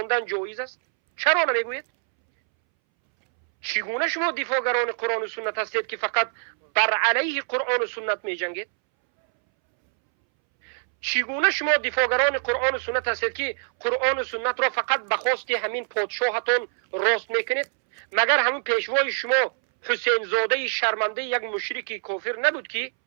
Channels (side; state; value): left; silent; 62 dB below the other